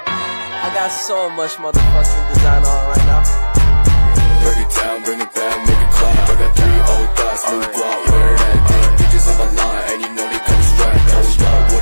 got so much motherfucking design on right now. Break it down, bring it back, make it clap. I got 3 old thoughts, new block, where that day. Bitches on my line, and you know they come straight. Hold up, what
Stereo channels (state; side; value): inverted; both; correlation -1.00